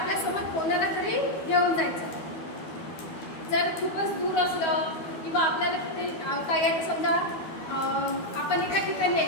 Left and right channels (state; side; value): late; right; 12 ms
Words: कोणाला तरी घेऊन जायचं. जर खूपच दूर असलं किंवा आपल्याला तिथे काही आहे, समजा आपण एका ठिकाणी आहे